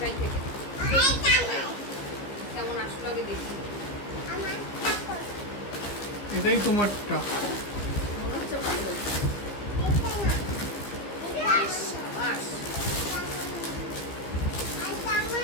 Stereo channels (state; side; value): late; right; 15 ms